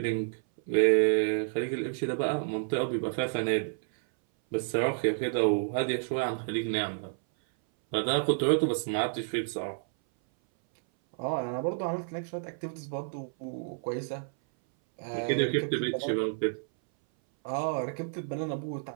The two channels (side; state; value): left; silent; 58 dB below the other